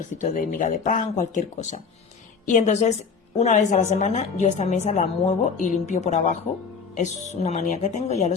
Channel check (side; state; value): right; quieter; 5.5 dB